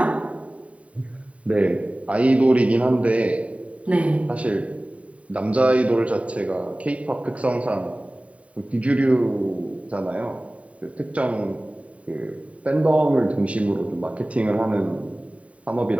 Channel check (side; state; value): left; late; 0.066 ms